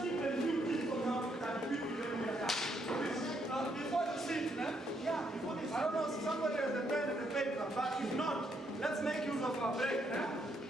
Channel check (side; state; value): both; normal; correlation 0.75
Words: give a few tips on how to start people when we are done. Before you sit, before this, I don't know if somebody has a pen and a paper, but if not, let's make use of our break.